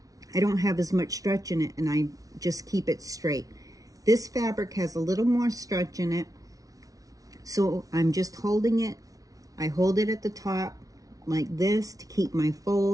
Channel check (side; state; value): left; late; 0.18 ms